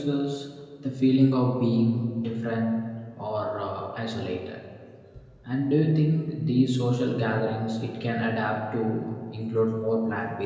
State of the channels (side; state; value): both; identical; correlation 1.00